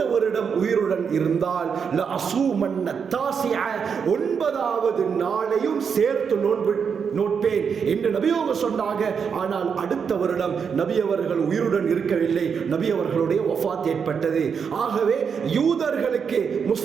வருடம் உயிருடன் இருந்தால் ல அஸூமன்ன தாசிஅ, 9வது நாளையும் சேர்த்து நோன்பு நோட்பேன் என்று நபி அவங்க சொன்னாங்க. ஆனால் அடுத்த வருடம் நபி அவர்கள் உயிருடன் இருக்கவில்லை, நபி அவர்களுடைய வஃபாத் ஏற்பட்டது. ஆகவே யூதர்களுக்கு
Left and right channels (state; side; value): quieter; left; 6.5 dB